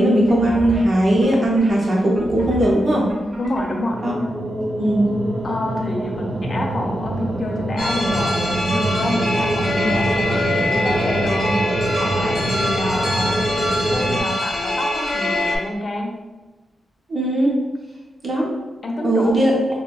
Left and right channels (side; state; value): both; normal; correlation 0.86